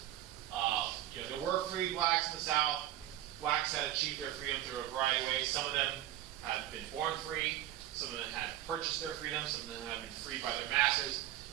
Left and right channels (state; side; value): quieter; left; 13.0 dB